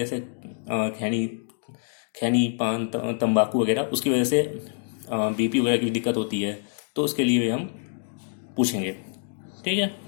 खैनी पान तंबाकू वगैरह, उसकी वजह से बीपी वगैरह की दिक्कत होती है, तो उसके लिए हम पूछेंगे। ठीक है,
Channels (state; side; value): silent; right; digital silence